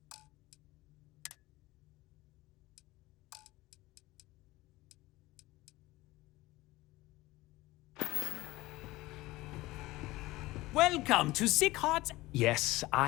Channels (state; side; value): quieter; right; 19.2 dB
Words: Welcome to Sick Hearts. Yes,